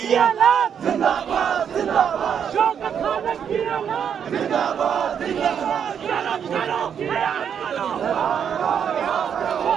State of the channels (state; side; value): quieter; left; 8.0 dB